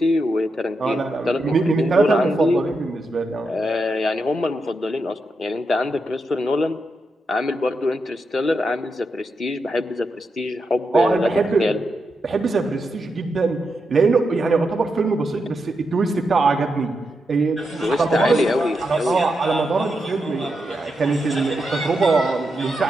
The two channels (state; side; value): normal; both; correlation 0.85